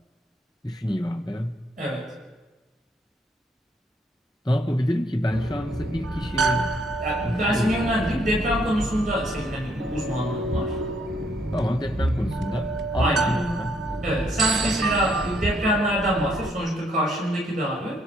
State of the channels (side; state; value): both; normal; correlation 0.70